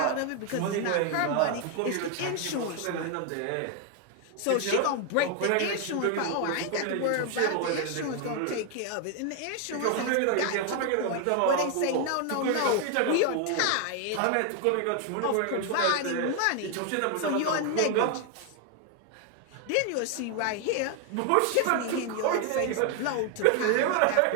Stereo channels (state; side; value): different; both; correlation 0.00